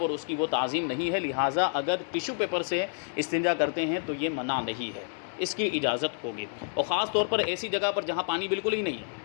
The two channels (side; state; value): right; silent; digital silence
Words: اور اس کی وہ تعظیم نہیں ہے، لہٰذا اگر ٹیشو پیپر سے استنجا کرتے ہیں تو یہ منع نہیں ہے، اس کی اجازت ہوگی۔ اور خاص طور پر ایسی جگہ پر جہاں پانی بالکل ہی نہیں ہے،